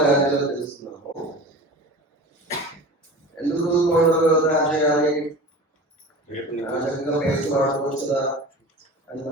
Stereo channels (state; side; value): normal; both; correlation 0.35